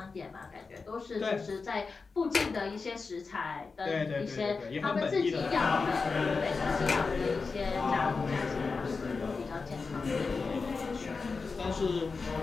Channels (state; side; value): quieter; right; 4.5 dB